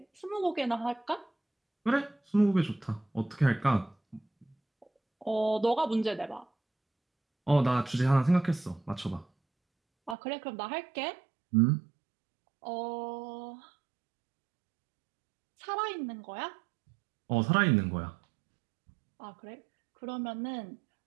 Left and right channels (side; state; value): left; drops out; at 10.2 s